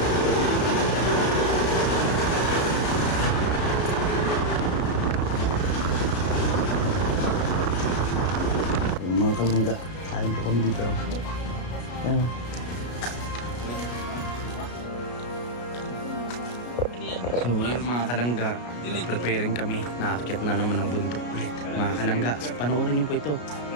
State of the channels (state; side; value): late; right; 33 ms